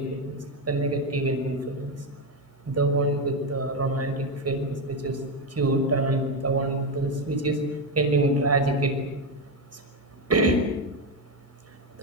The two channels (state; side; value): normal; both; correlation 0.09